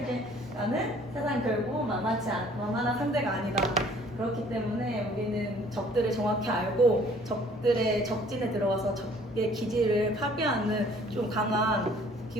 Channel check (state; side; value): normal; both; correlation 0.56